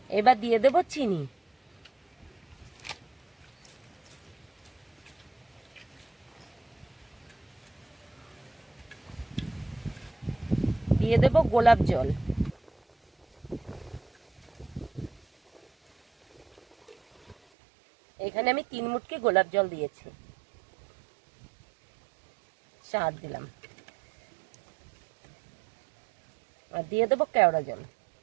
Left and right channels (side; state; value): left; drops out; at 17.4 s